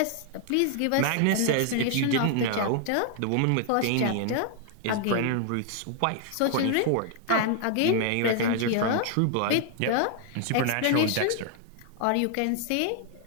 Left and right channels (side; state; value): both; different; correlation 0.00